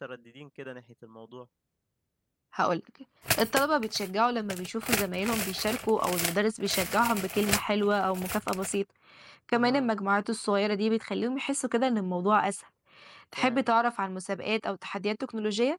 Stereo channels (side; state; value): both; identical; correlation 1.00